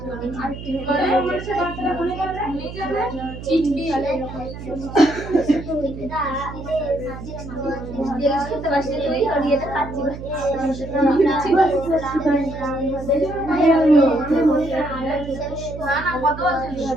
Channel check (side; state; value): right; noise; hum, 11 dB below the sound